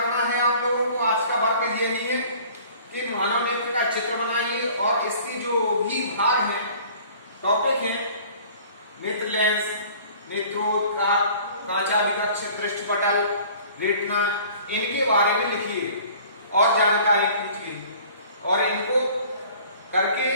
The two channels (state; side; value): inverted; both; correlation -0.49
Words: है आप लोगों को। आज का वर्ग ये नहीं है कि मानव नेत्र का चित्र बनाइए और इसकी जो भी भाग है, टॉपिक है, नेत्र लेंस, नेत्रोद का, कांचावी कक्ष, दृष्टिपटल, रेटिना, इनके बारे में लिखिए और जानकारी कीजिए और इनको करके